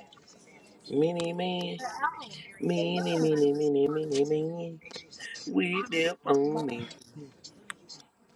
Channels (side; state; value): both; identical; correlation 1.00